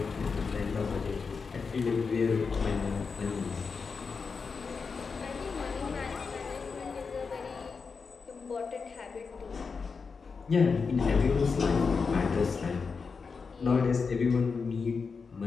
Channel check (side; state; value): right; quieter; 5.1 dB